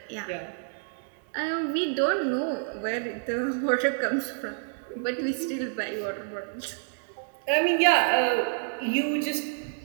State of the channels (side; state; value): left; silent; digital silence